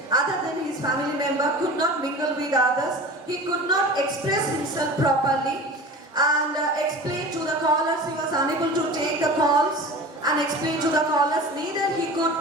other than his family member could not mingle with others. He could not express himself properly and explain to the callers. He was unable to take the calls and explain to the callers. Neither he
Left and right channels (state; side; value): normal; both; correlation 0.36